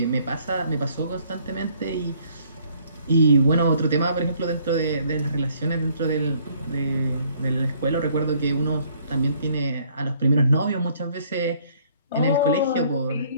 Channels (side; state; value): both; inverted; correlation -0.62